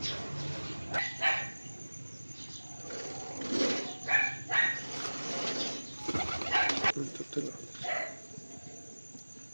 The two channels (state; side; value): inverted; both; correlation -1.00